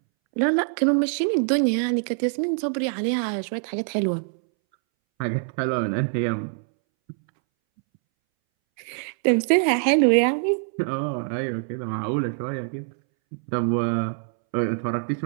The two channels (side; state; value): left; silent; 62 dB below the other